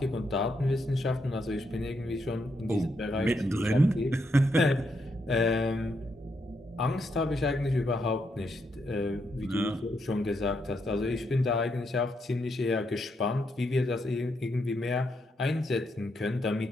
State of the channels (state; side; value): normal; both; correlation 0.79